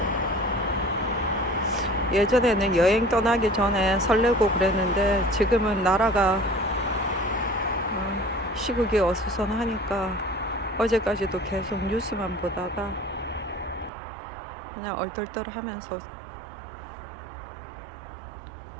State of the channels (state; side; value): drops out; left; at 13.9 s